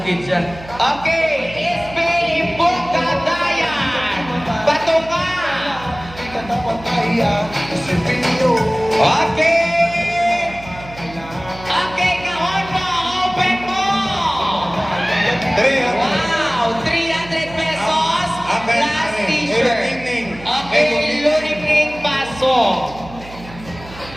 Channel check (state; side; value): noise; right; hum, 17 dB below the sound